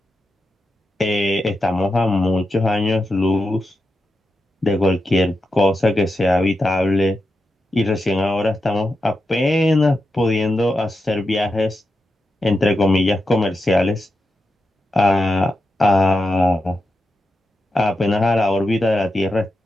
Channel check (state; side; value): normal; both; correlation 0.88